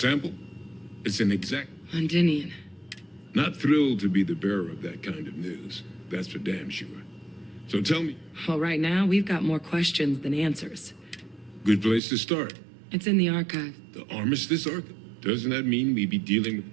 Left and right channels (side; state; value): left; drops out; at 12.0 s